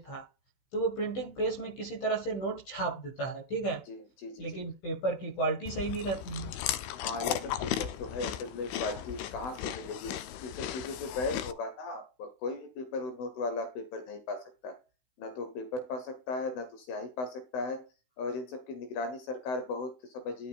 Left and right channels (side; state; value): right; late; 16 ms